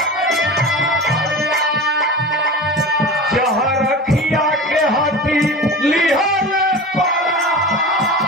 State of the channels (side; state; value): both; normal; correlation 0.32